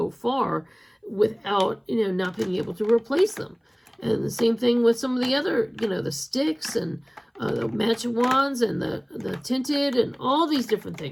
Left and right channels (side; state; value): both; identical; correlation 1.00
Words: far without, not being able to replace them. And the same thing with some of the other, the sticks and the matching wands and the tinted and all these different